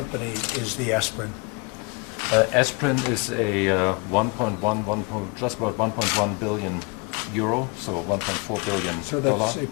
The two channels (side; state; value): right; quieter; 30.7 dB